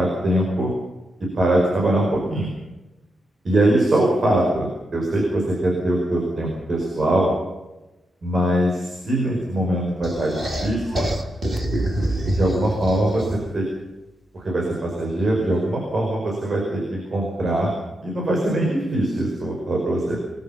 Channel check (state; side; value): normal; both; correlation 0.84